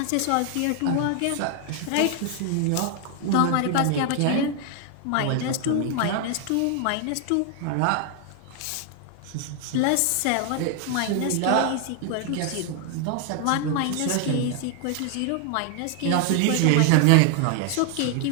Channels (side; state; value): both; different; correlation 0.00